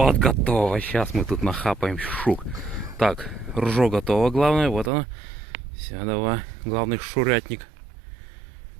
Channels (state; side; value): drops out; left; at 4.9 s